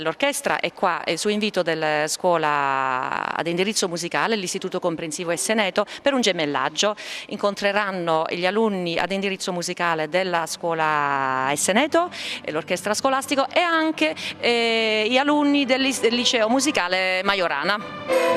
è qua su invito della scuola ad indirizzo musicale, l'Istituto Comprensivo Esseneto, per un gemellaggio. Incontreranno gli alunni ad indirizzo musicale della scuola Esseneto, l'orchestra scolastico, e anche gli alunni del liceo musicale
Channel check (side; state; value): both; identical; correlation 1.00